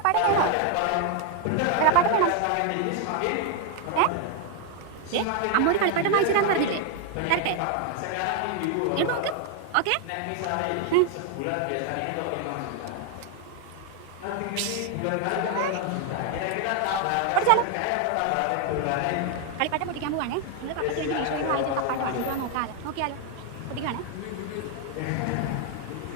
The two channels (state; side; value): different; both; correlation 0.00